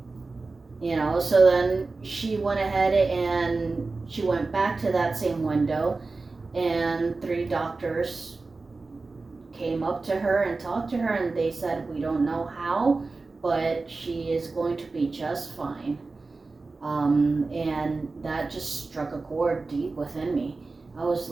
So then she went ahead and she went back to that same window, and 3 doctors came up to her and talked to her, and they said, we don't know how, but she is going to be just fine. And that just struck a chord deep within me. I was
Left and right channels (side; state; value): left; quieter; 3.7 dB